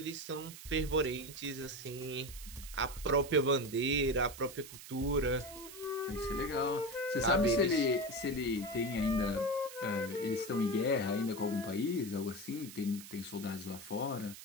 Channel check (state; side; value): noise; right; hiss, 14 dB below the sound